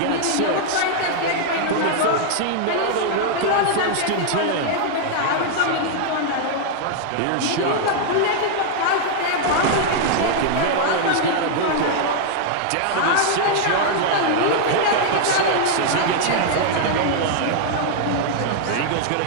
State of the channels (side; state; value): both; different; correlation -0.01